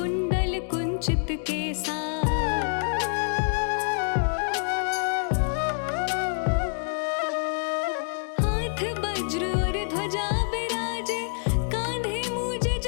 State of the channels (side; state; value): right; silent; digital silence